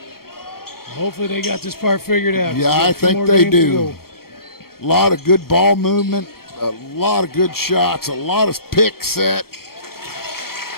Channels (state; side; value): late; right; 0.94 ms